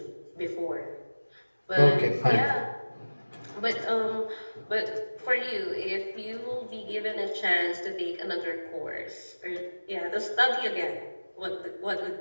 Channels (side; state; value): both; inverted; correlation -1.00